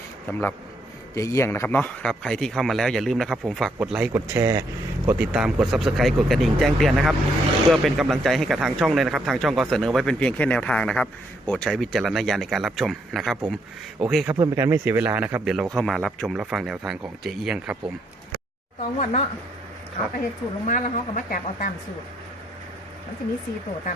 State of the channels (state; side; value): normal; both; correlation 0.73